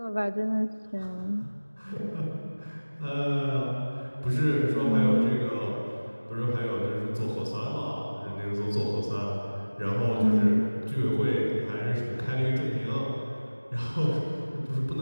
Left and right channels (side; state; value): both; inverted; correlation -1.00